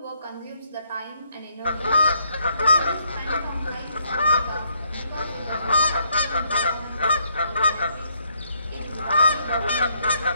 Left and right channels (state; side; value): inverted; both; correlation -0.71